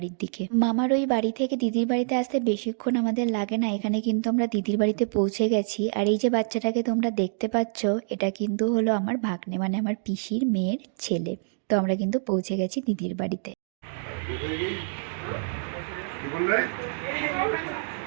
দিকে। মামার ওই বাড়ি থেকে দিদির বাড়িতে আসতে বেশিক্ষণ আমাদের লাগে না। এখানে কিন্তু আমরা দিদির বাড়িতে পৌঁছে গেছি। আর এই যে বাচ্চাটাকে তোমরা দেখতে পাচ্ছ, এটা কিন্তু হলো আমার ভাগ্নে, মানে আমার পিসির মেয়ের ছেলে। তো আমরা কিন্তু পৌঁছে গেছি দিদির বাড়িতে।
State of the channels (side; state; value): left; silent; digital silence